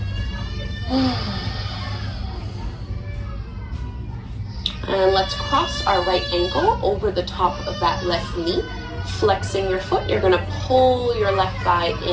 And let's cross our right ankle over the top of that left knee. Flexing your foot, you're gonna pull your left thigh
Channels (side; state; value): both; identical; correlation 1.00